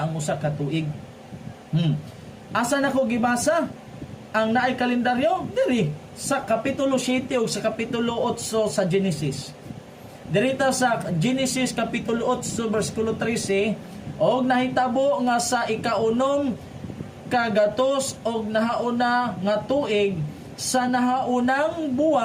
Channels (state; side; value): identical; both; correlation 1.00